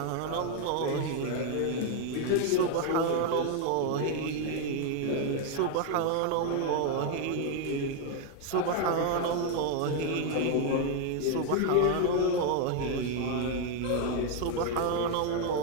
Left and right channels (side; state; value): both; different; correlation 0.01